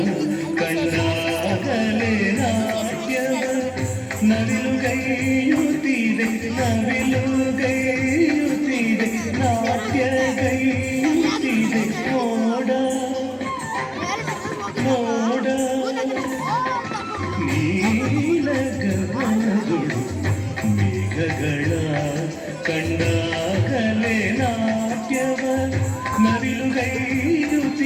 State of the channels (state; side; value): identical; both; correlation 1.00